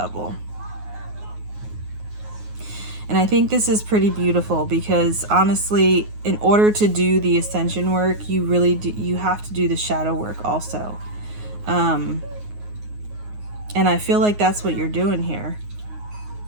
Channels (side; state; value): left; late; 9.5 ms